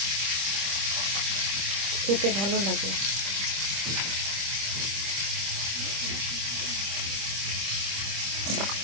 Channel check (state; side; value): late; left; 25 ms